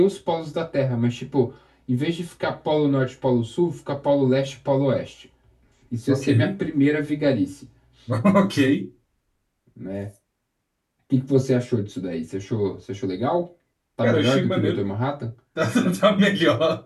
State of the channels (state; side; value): identical; both; correlation 1.00